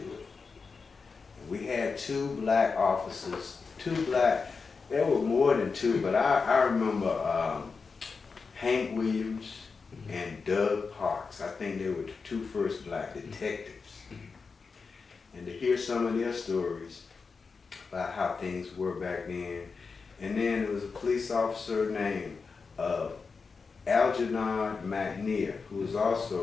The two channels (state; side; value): quieter; right; 4.9 dB